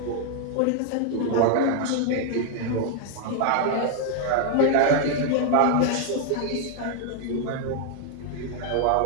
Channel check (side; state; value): both; different; correlation 0.00